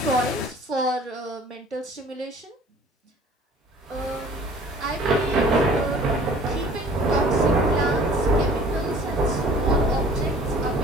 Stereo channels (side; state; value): both; normal; correlation 0.50